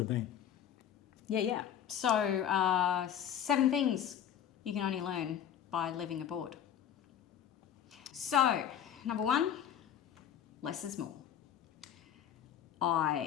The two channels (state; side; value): quieter; right; 9.5 dB